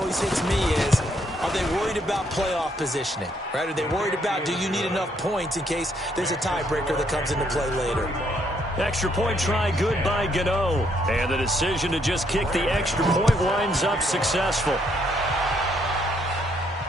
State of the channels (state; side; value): normal; both; correlation 0.71